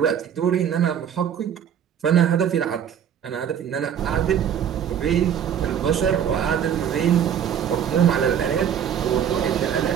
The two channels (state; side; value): quieter; left; 8.8 dB